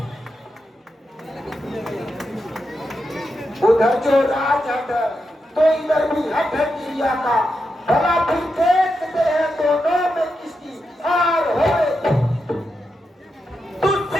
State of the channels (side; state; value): both; normal; correlation 0.87